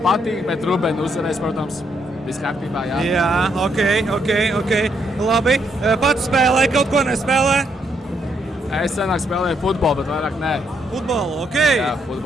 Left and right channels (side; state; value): both; normal; correlation 0.75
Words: patīk, bet Rubēna uzvarēs, protams, viss kārtībā, jā. Jā, ok. Labi, pats spēlē, kaut ko nespēlē? Es senāk spēlēju futbolu, bet vairāk nē. Futbolu, ok. Jā,